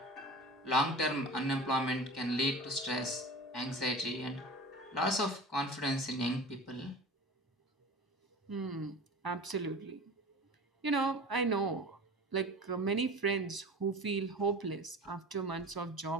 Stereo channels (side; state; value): both; normal; correlation 0.36